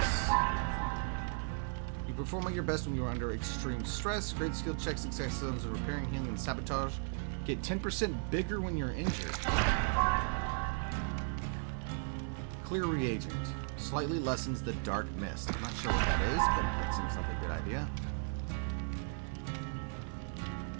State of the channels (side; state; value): left; silent; 54 dB below the other